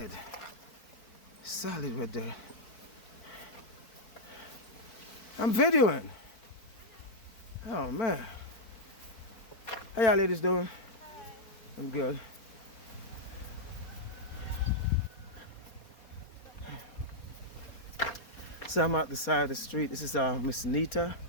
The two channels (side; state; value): right; late; 4.5 ms